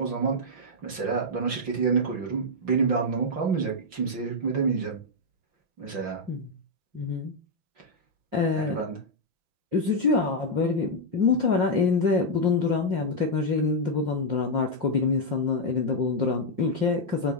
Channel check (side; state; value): left; late; 5.7 ms